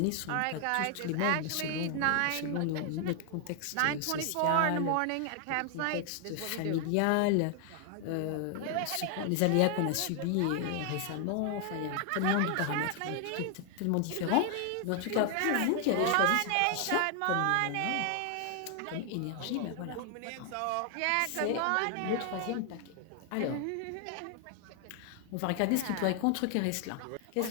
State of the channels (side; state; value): both; different; correlation 0.00